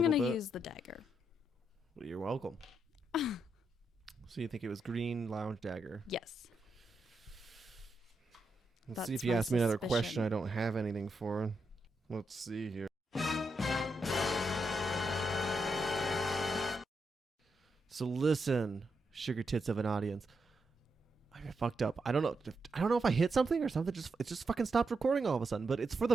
going little to bit. use the dagger. Well, you're welcome. So you think it was green lounge dagger? Yes. Let's That's see if you my ask me another question suspicion. I don't have anything for. Let's see here. So listen, sugar tits of an audience. I fucked up. I don't know if I hit something or something. It just fucking stopped recording all of a sudden. But it's for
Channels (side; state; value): both; normal; correlation 0.83